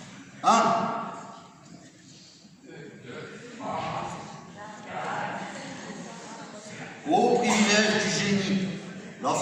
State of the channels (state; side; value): identical; both; correlation 1.00